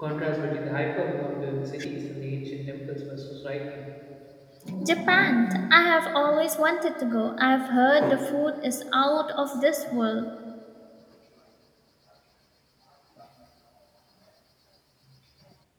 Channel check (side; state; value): both; identical; correlation 1.00